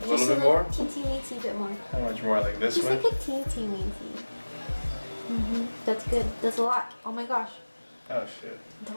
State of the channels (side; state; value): both; inverted; correlation -1.00